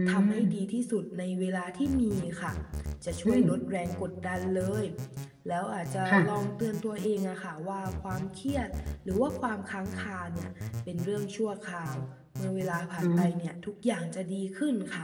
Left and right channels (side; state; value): both; identical; correlation 1.00